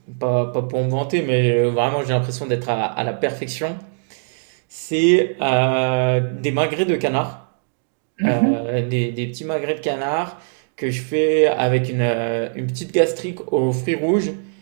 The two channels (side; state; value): left; silent; digital silence